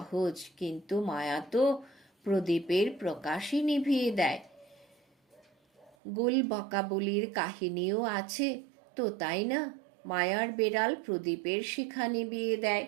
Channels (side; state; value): left; drops out; at 6.0 s